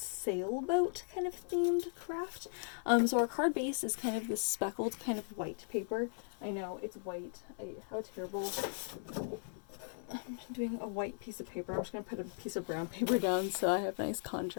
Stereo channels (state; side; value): silent; right; 53 dB below the other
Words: kind of themed craft. So our card base is kind of this speckled kind of white paper. I know it's white. How terrible. I'm doing a white piece of paper. I'm just going to put a piece of brown paper down so I have nice